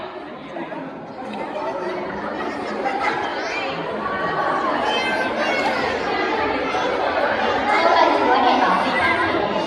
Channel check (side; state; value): both; identical; correlation 1.00